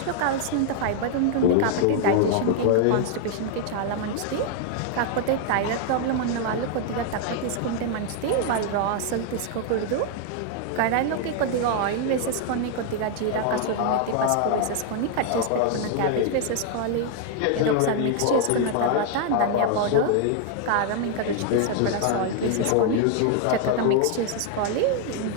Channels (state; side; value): different; both; correlation 0.00